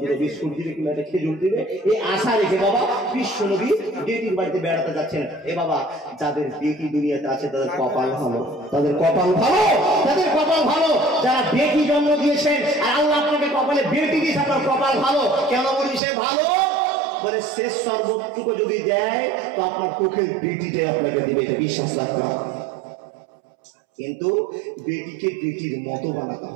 2টা বিস্কুট দিবে, কিংবা একটা খেজুর দিবে, এই আশা রেখে বাবা বিশ্ব নবী বেটির বাড়িতে বেড়াতে যাচ্ছেন। এ বাবা, যাদের বেটি দুনিয়াতে আছে তাদের কপাল ভালো, তাদের কপাল ভালো, তাদের কপাল ভালো। যারা বেটি জন্ম দিয়েছেন আর আল্লাহ আপনাকে কপালে বেটি দিয়েছে, আপনার কপাল ভালো। কেন বলি সে ভালো? বলে শেষ সর্বটুকু যদি দেয় তো আপনার চোখের বেটিটাই আপনাকে দিবে, এটা বিশ্বাস রাখতে হবে। কিন্তু বেটিকে বেটির মতো বানাতে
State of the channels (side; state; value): left; drops out; at 16.0 s